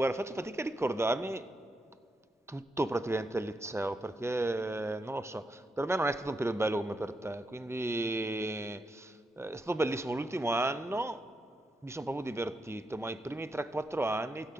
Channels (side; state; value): both; normal; correlation 0.83